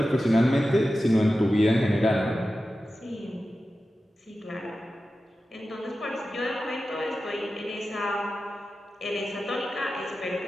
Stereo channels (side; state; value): both; normal; correlation 0.93